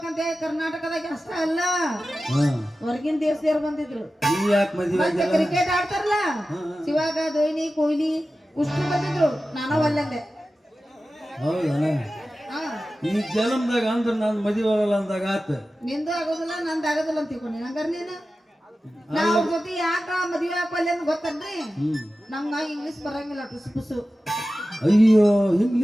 ಕರ್ನಾಟಕದಾಗ ಅಷ್ಟ ಅಲ್ಲ, ಹಾ ಹೊರಗಿನ ದೇಶದವ್ರು ಬಂದಿದ್ರು. ನೀ ಯಾಕೆ ಮದುವೆ ಮತ್ತೆ ಆಗಿಲ್ಲ? ಕ್ರಿಕೆಟ್ ಆಡ್ತಾರಲ್ಲ, ಶಿವಾಗ ಧೋನಿ ಕೊಹ್ಲಿ ಉಷ್ಟು ಬಂದಿದ್ರು, ನಾನು ಒಲ್ಲಂದೆ. ಹೌದಾ? ಹಾ ಈ ಜನ್ಮದಾಗ ಅಂದ್ರೆ ನಾನು ಮದುವೆ ಆಗಲ್ಲ ಅಂದಾಗ ಆತ. ನಿಂದು ಆಗೋದಿಲ್ಲ, ನಂದು ಆಗೋದಿಲ್ಲ ಅಂತ ತಿಳ್ಕೊಂಡಿ ಹಂಗಾರ ನೀನು. ನಾವ್ ಅವ್ರ ಜೊತೆ ಯಾಕ ಮದ್ವೆ ಹಾಕಲ್ಲ ಅಂತ ಗೊತ್ತನ್ರಿ? ನಮ್ಗ ಇಂಗ್ಲಿಷ್ ಬರಂಗಿಲ್ಲ, ಟುಸು ಪುಸು. ಅಯ್ಯೋ,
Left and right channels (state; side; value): normal; both; correlation 0.94